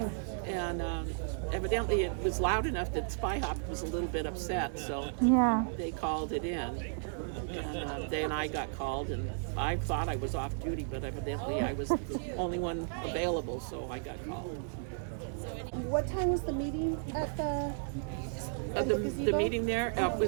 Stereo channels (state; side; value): silent; left; digital silence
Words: and evidently it was loud enough that Spy Hop was a little bit upset, so Yeah. they called it in. And then I got called, and I thought I was off duty, but evidently I was the only one available, so I got called. What time was the meeting at The meeting there